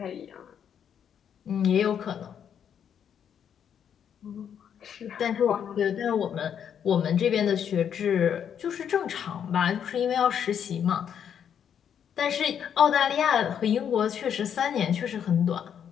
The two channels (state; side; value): quieter; right; 8.5 dB